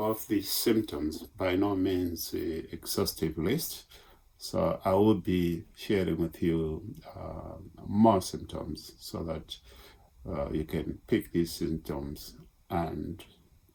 the symptoms, by no means an exhaustive list. So I will be sharing with you more symptoms so that you can pick these symptoms and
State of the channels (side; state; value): both; identical; correlation 1.00